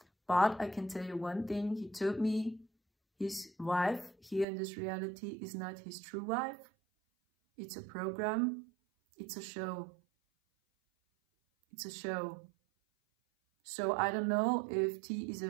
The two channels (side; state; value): left; drops out; at 4.5 s